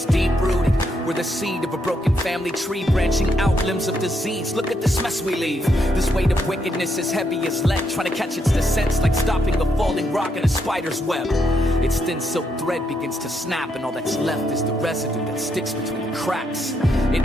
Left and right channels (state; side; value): normal; both; correlation 0.78